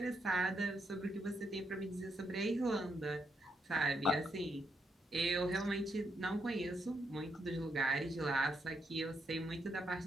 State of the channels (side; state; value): both; normal; correlation 0.79